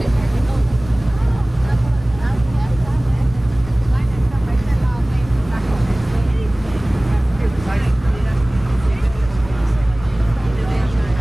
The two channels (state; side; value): noise; left; rumble, 16 dB below the sound